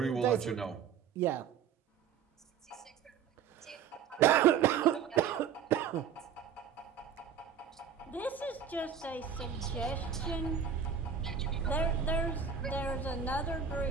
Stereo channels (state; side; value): quieter; left; 7.6 dB